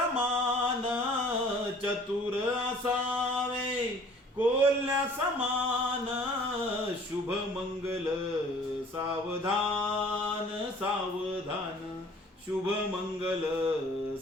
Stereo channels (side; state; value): both; normal; correlation 0.52